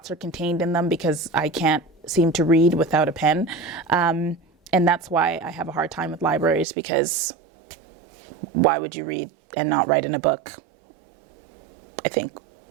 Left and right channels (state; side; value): drops out; left; at 6.7 s